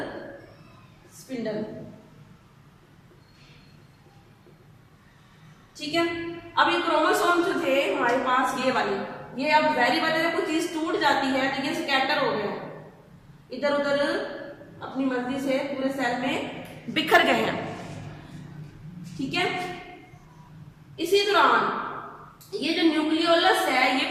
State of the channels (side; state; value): both; identical; correlation 1.00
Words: स्पिंडल, ठीक है। अब ये क्रोमोसोम जो थे हमारे पास ये वाले, ये अब जाहिर बात है जब कोई चीज टूट जाती है तो ये स्कैटर हो गए, इधर उधर अपनी मर्जी से पूरे सेल में बिखर गए हैं, ठीक है। इसी दौरान ये जो न्यूक्लियोलस है ये